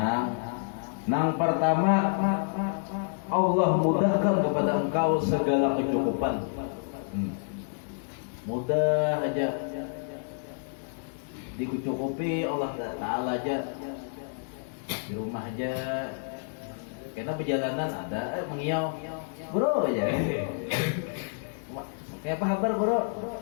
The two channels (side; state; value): right; silent; digital silence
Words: Nang pertama, Allah mudahkan kepada engkau segala kecukupan. Mudah aja dicukupi Allah Ta'ala aja. Di rumah aja. Karena perjalanan ada mengiau, bro aja. Kayak apa kabar bro?